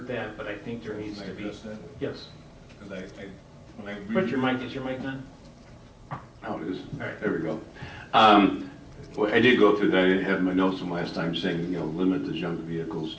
that, but I think there needs to be. Can I address that? Yes. Because when I Put your mic. Is your mic on? Oh, it is. All right. There we go. Well, I did go through that. I didn't have my notes from last time saying, limit the junk vehicles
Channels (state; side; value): identical; both; correlation 1.00